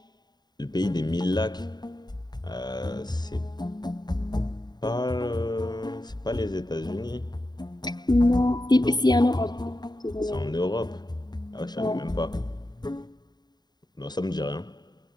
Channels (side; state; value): right; late; 0.20 ms